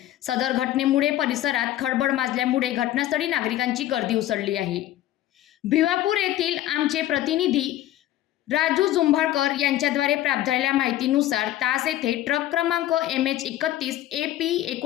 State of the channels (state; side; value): quieter; right; 13.8 dB